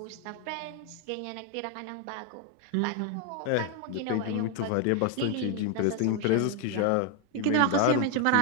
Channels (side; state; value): both; different; correlation 0.01